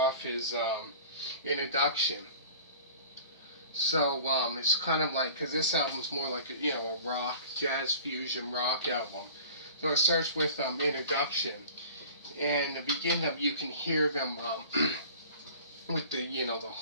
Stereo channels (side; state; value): both; inverted; correlation -0.43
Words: is Introduction. So it's kind of like, because this album's more like a rock, jazz fusion rock album. So it starts with Introduction, and the beginning of you can hear them with the